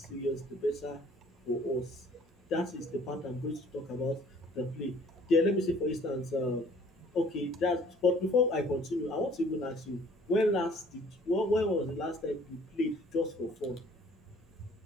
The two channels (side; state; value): both; normal; correlation 0.55